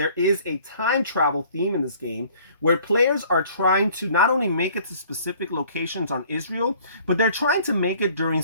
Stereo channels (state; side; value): inverted; both; correlation -0.54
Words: is a time travel theme in this game where players are trying to not only make it to specific locations on Israel, but they're trying to make it during